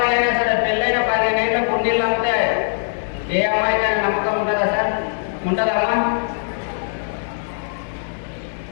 అయినా సరే పెళ్ళైన 15 ఏళ్ళ కుండీళ్ళు అంతే. ఏ అమ్మాయికైనా నమ్మకం ఉంటుందా సార్? ఉంటుందమ్మా?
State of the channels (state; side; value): silent; right; 65 dB below the other